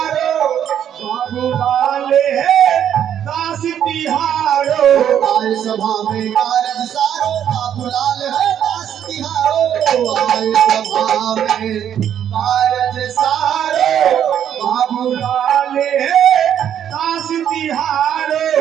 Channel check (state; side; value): quieter; left; 9.6 dB